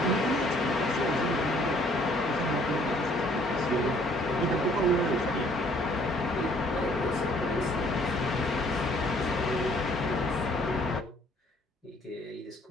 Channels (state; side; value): normal; both; correlation 0.61